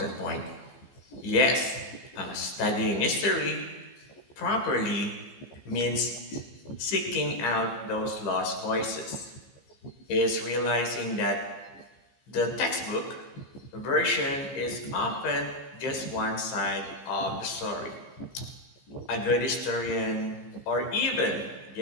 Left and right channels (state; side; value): late; right; 15 ms